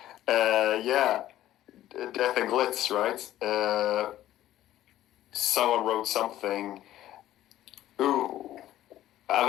yeah, Death and Glitz, right? Someone wrote something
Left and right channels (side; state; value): right; quieter; 13.5 dB